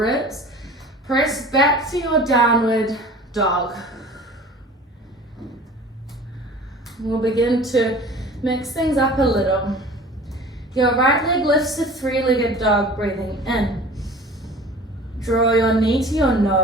Press back to your downward dog. We'll begin to mix things up a little. Your right leg lifts to three-legged dog, breathing in. Draw your knee to your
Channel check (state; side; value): normal; both; correlation 0.43